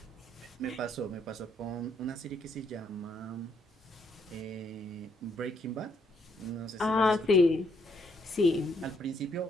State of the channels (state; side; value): normal; both; correlation 0.71